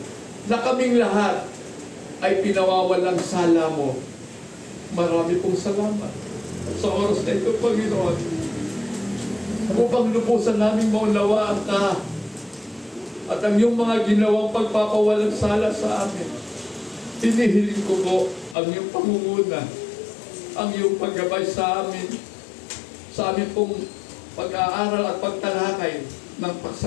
na kaming lahat ay pinawawalang sala mo. Marami pong salamat sa oras na ito, Panginoon. Upang lubusan namin maunawaan ka at ang iyong mga ginawang pagpapawalang sala sa amin. Hinihiling ko po ang iyong pangunguna, ang iyong paggabay sa amin, sa amin pong pag-aaral at pagtalakay ng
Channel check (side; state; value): right; drops out; at 18.6 s